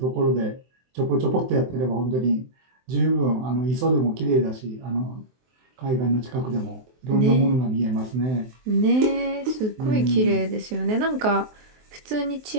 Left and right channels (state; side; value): late; left; 23 ms